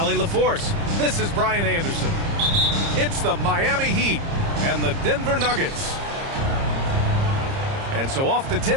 LaForce, this is Brian Anderson. It's the Miami Heat and the Denver Nuggets. And so off the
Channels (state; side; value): late; left; 30 ms